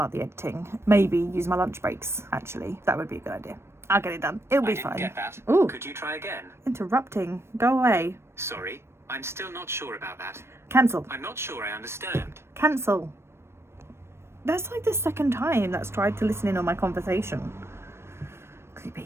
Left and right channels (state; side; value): late; left; 0.12 ms